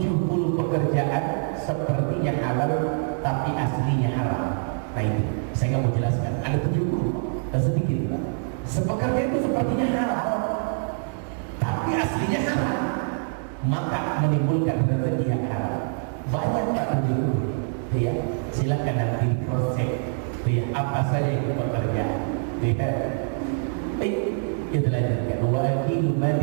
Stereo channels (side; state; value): left; silent; 62 dB below the other